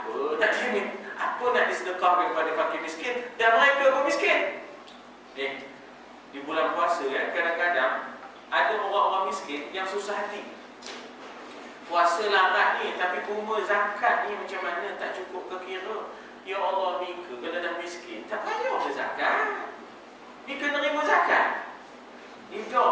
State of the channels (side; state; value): both; identical; correlation 1.00